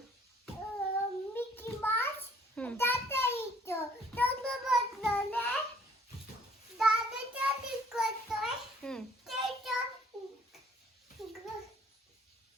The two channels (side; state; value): both; normal; correlation 0.59